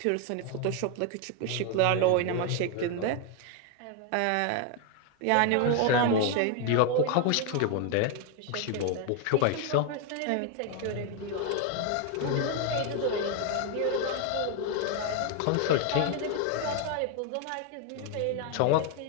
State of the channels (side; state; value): both; different; correlation 0.01